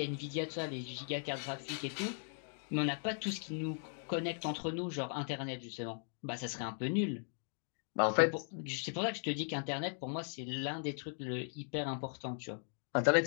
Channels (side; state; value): right; silent; 52 dB below the other